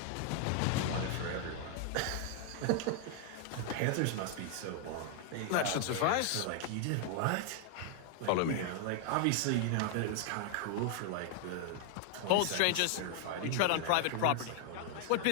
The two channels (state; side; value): different; both; correlation 0.00